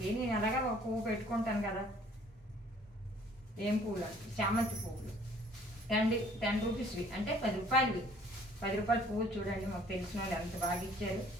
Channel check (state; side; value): normal; both; correlation 0.57